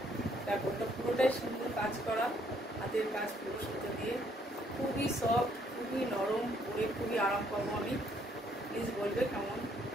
দেখো এটা পুরোটাই সুন্দর কাজ করা, হাতের কাজ পুরো সুতো দিয়ে, খুবই সফট, খুবই নরম, পরে খুবই আরাম পাবো আমি। প্লিজ বলবে কেমন।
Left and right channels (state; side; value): normal; both; correlation 0.67